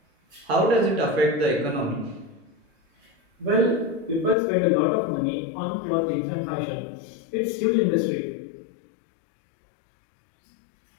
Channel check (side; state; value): right; drops out; at 4.4 s